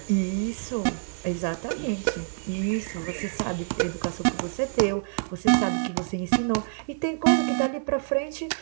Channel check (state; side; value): silent; left; digital silence